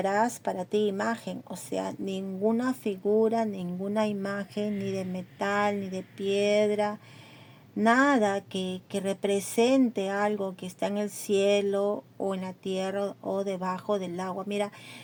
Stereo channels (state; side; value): identical; both; correlation 1.00